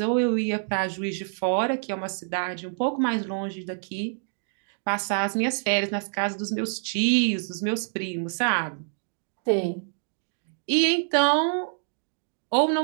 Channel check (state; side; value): silent; left; digital silence